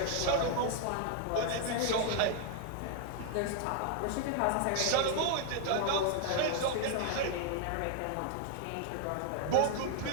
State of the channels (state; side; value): different; both; correlation 0.00